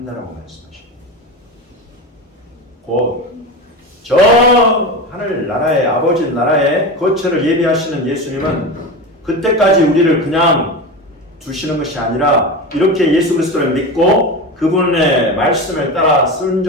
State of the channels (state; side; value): normal; both; correlation 0.24